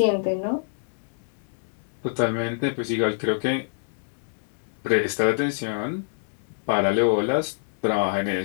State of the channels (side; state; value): right; silent; digital silence